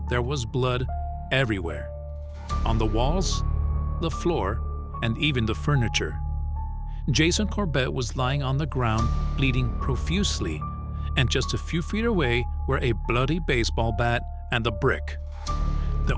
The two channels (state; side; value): identical; both; correlation 1.00